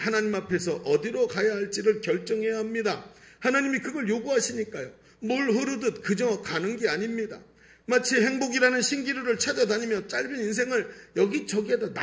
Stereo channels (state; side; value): identical; both; correlation 1.00